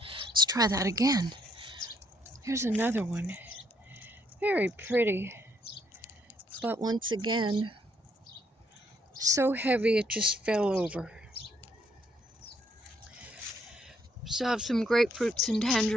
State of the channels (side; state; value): both; normal; correlation 0.70